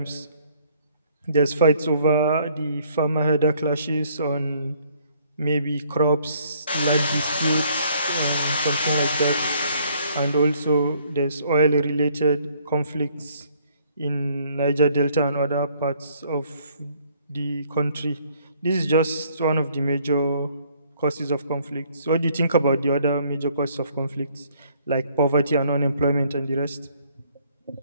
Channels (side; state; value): both; inverted; correlation -0.64